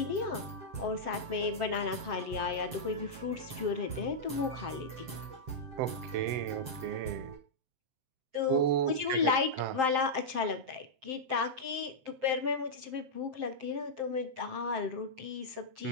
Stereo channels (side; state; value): left; late; 7.6 ms